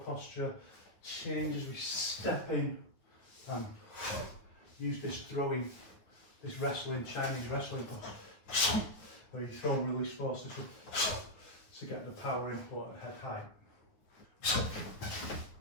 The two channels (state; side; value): late; right; 9.5 ms